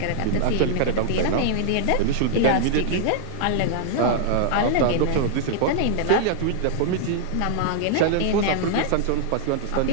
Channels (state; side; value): different; both; correlation -0.01